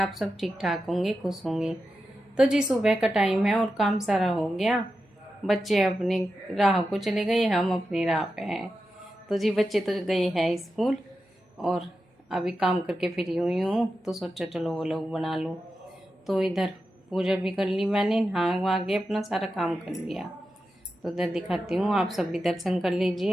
सब ठीक ठाक होंगे, खुश होंगे। तो जी सुबह का टाइम है और काम सारा हो गया। बच्चे अपनी राह को चले गए, हम अपनी राह पे हैं। तो जी बच्चे तो गए हैं स्कूल और अभी काम करके फ्री हुई हूँ, तो सोचा चलो वो लोग बना लूँ। तो इधर पूजा भी कर ली मैंने, नहा वहा के अपना सारा काम कर लिया। तो इधर दिखाती हूँ, आप सब भी दर्शन कर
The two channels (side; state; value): both; normal; correlation 0.90